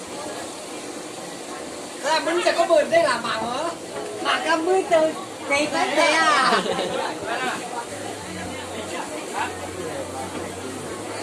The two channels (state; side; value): identical; both; correlation 1.00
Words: Là mình sẽ có bươn đây là mảng hả? Mảng cam mươi từ này tới đây à?